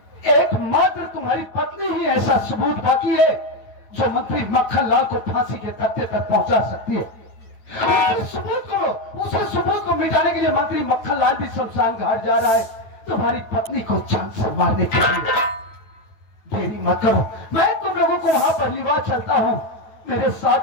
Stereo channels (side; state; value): right; late; 9.2 ms